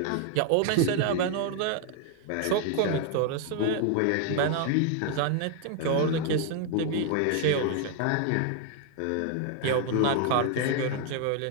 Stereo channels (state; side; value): different; both; correlation 0.00